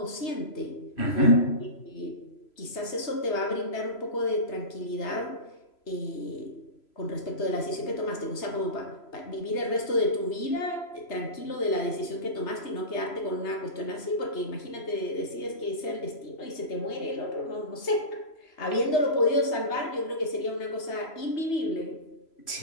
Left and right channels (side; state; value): right; late; 3.0 ms